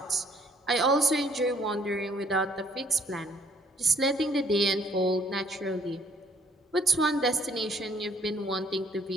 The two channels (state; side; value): normal; both; correlation 0.63